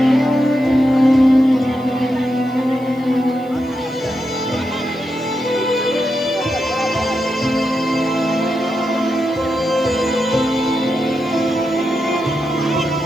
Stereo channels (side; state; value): right; noise; hiss, 29 dB below the sound